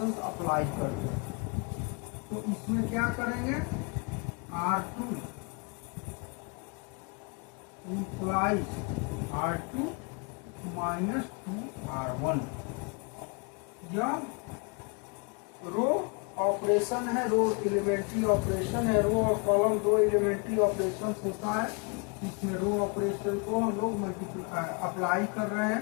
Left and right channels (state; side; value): quieter; right; 33.7 dB